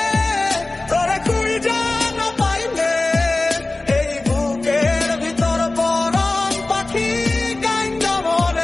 তোরে খুঁজে না পাইলে এই বুকের ভিতর পরাণ পাখি গাইন্দা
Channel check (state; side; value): quieter; right; 3.0 dB